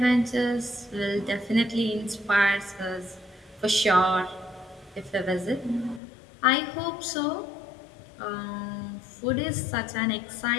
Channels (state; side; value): drops out; right; at 6.0 s